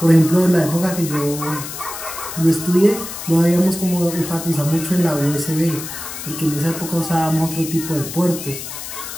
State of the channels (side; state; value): left; noise; hiss, 9 dB below the sound